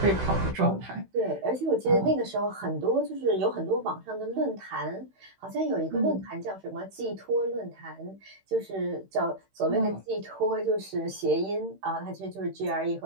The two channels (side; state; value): left; late; 16 ms